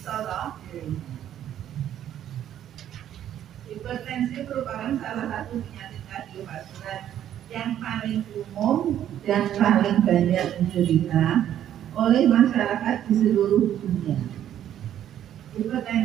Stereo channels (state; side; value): quieter; left; 10.9 dB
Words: loh. Hipertensi merupakan salah satu penyakit kardiovaskular yang paling umum dan paling banyak diderita oleh masyarakat di seluruh dunia.